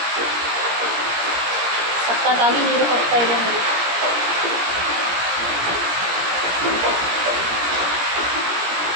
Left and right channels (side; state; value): left; late; 17 ms